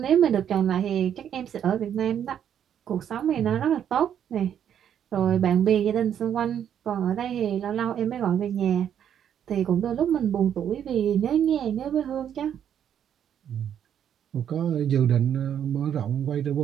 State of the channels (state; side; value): quieter; left; 9.3 dB